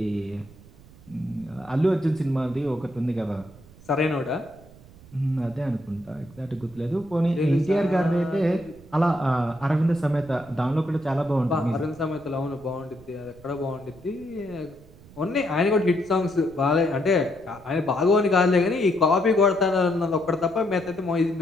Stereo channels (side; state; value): right; noise; rumble, 23 dB below the sound